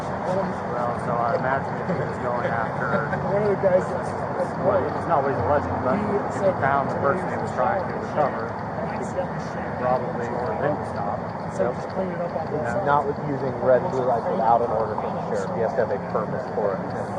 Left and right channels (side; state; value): both; identical; correlation 1.00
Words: Well, so I imagine if he was going after one of the guys well, it's not what he's alleging, but if he found the person he was trying to recover, probably order them to stop. Not with using red and blue lights without an order from the sheriff. He has to have a permit for it.